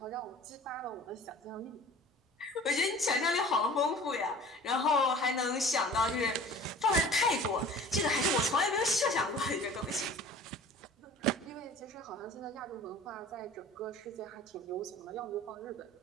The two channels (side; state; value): both; normal; correlation 0.45